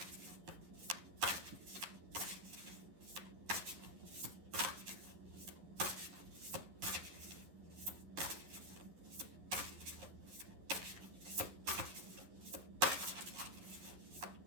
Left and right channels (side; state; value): left; late; 11 ms